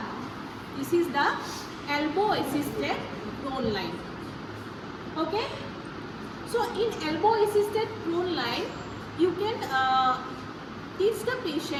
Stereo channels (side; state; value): both; identical; correlation 1.00